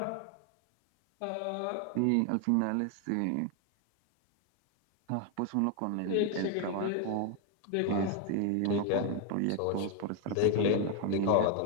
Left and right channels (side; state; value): both; different; correlation 0.01